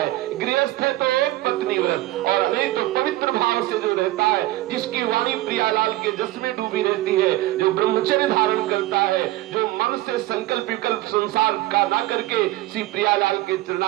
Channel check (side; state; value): left; quieter; 17.0 dB